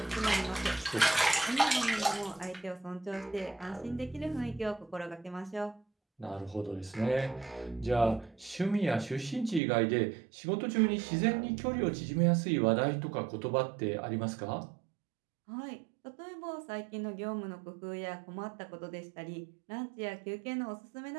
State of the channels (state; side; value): drops out; left; at 9.6 s